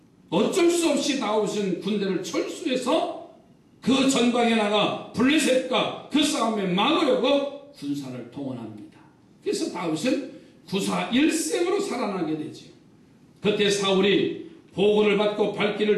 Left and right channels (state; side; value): identical; both; correlation 1.00